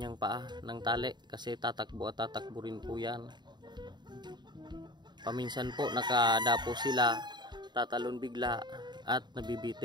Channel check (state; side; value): late; left; 0.21 ms